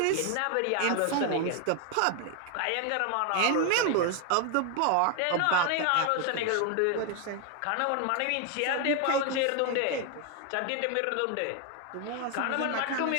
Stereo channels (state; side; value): different; both; correlation 0.01